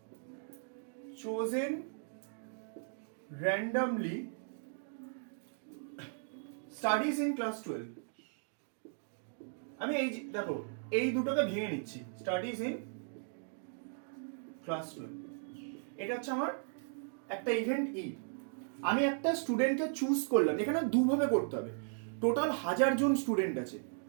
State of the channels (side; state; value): left; silent; digital silence